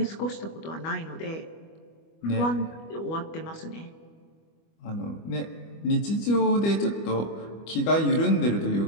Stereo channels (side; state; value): right; late; 25 ms